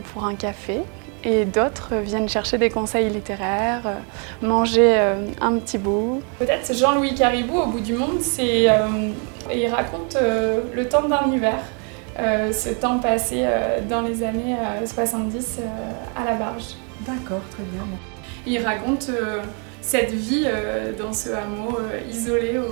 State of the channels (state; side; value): quieter; left; 38.6 dB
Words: pour un café et d'autres viennent chercher des conseils littéraires, manger un petit bout. Peut-être c'est Jean-Louis Caribou au bout du monde, il raconte le temps d'un hiver, ce temps passé dans les années 70 à la barge. D'accord, très bien. Il raconte cette vie dans ce hameau isolé